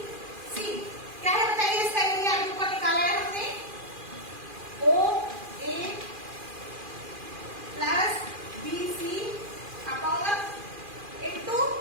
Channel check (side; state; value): left; late; 2.4 ms